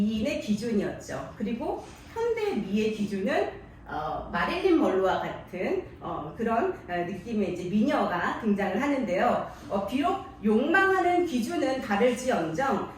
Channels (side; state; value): both; identical; correlation 1.00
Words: 기준이었죠. 그리고 현대 미의 기준은 마릴린 먼로와 같은 그런 느낌의 이제 미녀가 등장을 하는데요. 비록 욕망하는 기준은 다를지언정